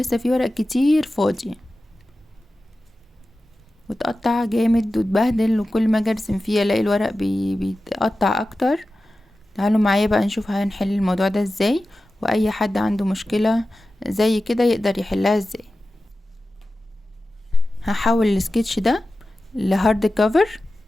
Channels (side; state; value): both; normal; correlation 0.94